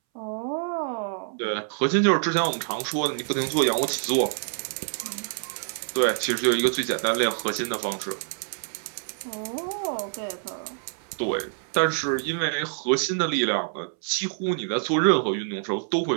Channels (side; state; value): left; silent; 61 dB below the other